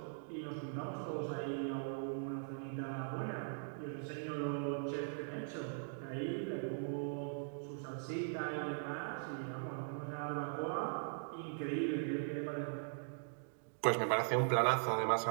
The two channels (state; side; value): silent; left; digital silence